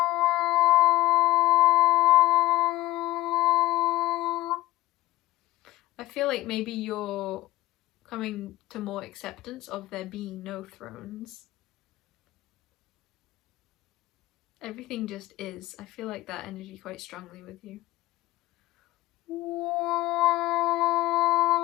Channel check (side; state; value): right; quieter; 17.2 dB